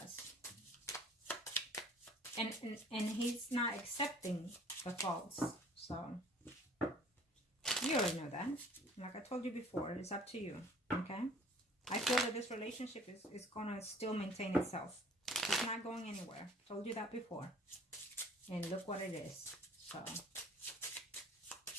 and he's not accepting the faults. So you already know that. Like I told you before, it's up to you. Okay? I feel that this relationship is going to still maintain itself. It's not going anywhere. Told you that before. And look what it is. So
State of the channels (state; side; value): normal; both; correlation 0.52